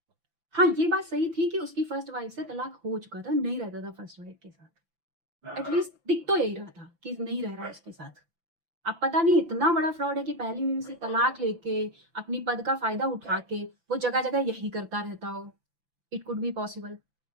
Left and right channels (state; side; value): late; left; 5.9 ms